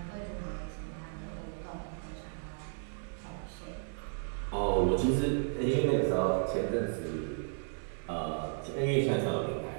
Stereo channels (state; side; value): silent; left; digital silence